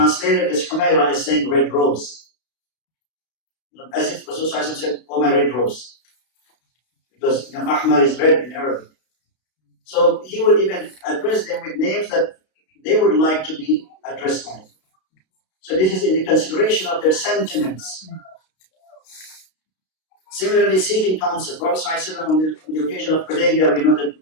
this Humayra as saying red rose. As if Rasulullah said, "Oh, my red rose." Because Ahmar is red in Arabic. So he would even address them with names that they would like to be addressed by. So this is in the consideration of their sentiments. Similarly, seeking counsel. Prophet ﷺ on the occasion of Hudaybiyah, we know that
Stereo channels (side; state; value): right; late; 32 ms